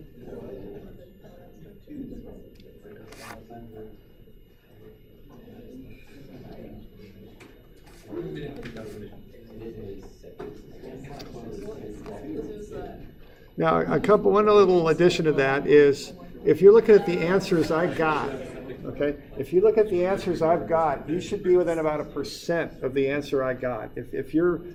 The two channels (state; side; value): identical; both; correlation 1.00